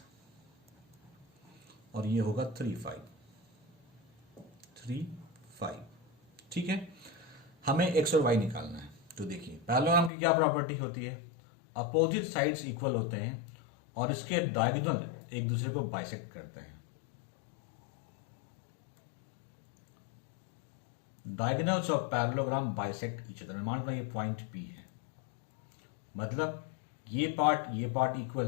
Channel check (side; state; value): right; drops out; at 10.1 s